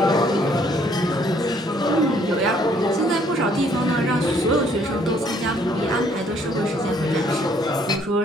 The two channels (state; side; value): normal; both; correlation 0.64